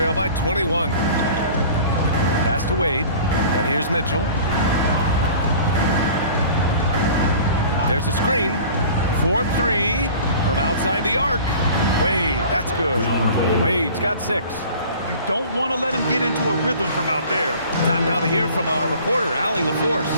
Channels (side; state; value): both; inverted; correlation -0.44